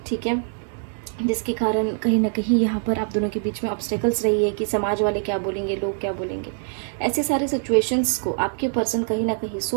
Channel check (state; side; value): silent; left; digital silence